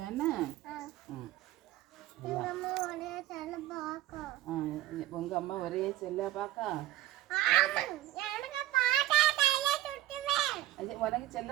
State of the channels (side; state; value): left; quieter; 14.9 dB